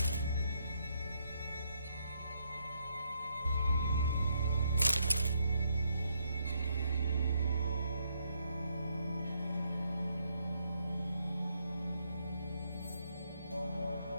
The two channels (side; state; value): both; inverted; correlation -0.75